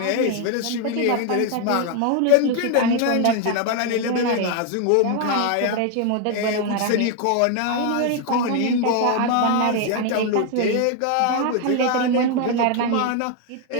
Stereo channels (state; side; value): different; both; correlation 0.01